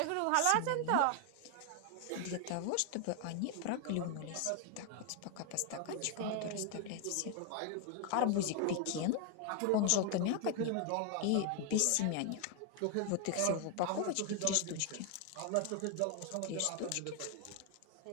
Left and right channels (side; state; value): both; different; correlation 0.00